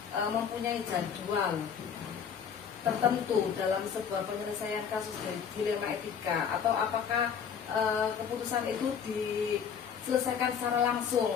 mempunyai jadwal tertentu dalam sebuah penyelesaian kasus dilema etika, atau apakah keputusan itu diselesaikan secara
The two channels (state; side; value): quieter; right; 7.3 dB